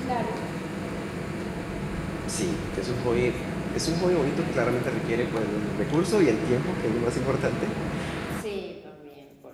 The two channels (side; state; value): both; identical; correlation 1.00